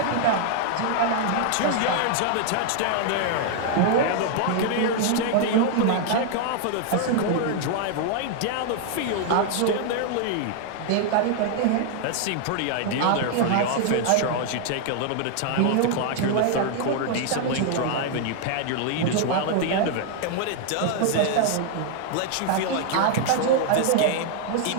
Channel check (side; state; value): both; different; correlation 0.00